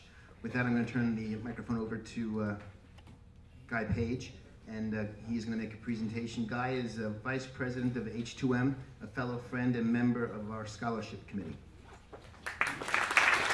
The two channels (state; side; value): identical; both; correlation 1.00